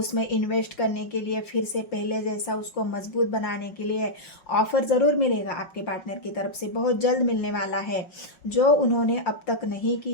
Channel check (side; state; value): right; late; 5.4 ms